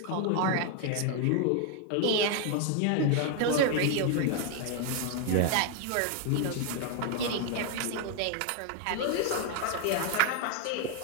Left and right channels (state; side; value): different; both; correlation 0.01